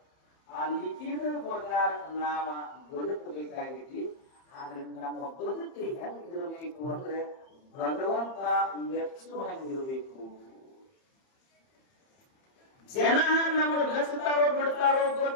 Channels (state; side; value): late; right; 30 ms